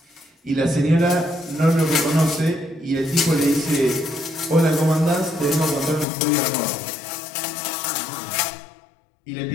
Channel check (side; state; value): right; drops out; at 6.1 s